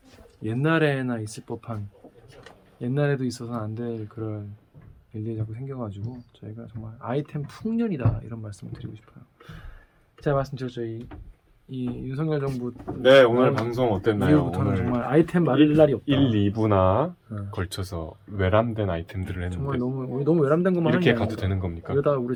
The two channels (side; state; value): both; identical; correlation 1.00